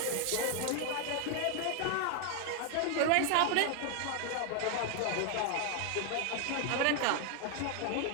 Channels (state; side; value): different; both; correlation 0.01